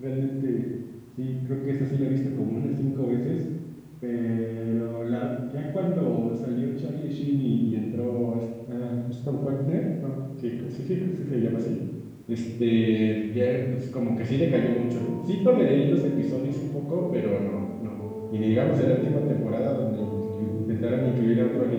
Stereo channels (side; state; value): both; identical; correlation 1.00